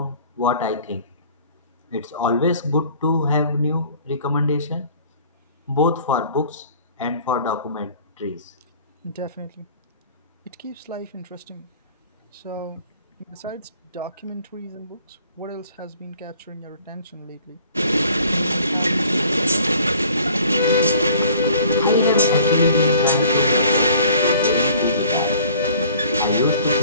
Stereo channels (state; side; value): inverted; both; correlation -0.53